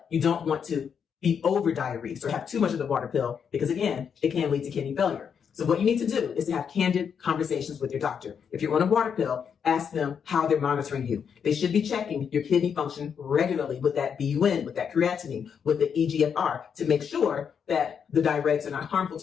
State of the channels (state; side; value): quieter; right; 7.2 dB